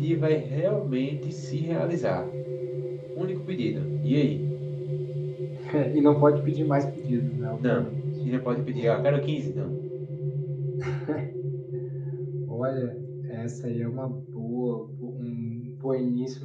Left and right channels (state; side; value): identical; both; correlation 1.00